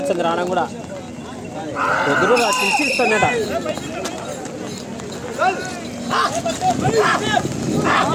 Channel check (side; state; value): both; identical; correlation 1.00